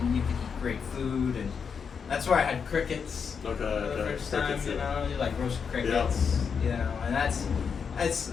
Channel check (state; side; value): quieter; right; 6.3 dB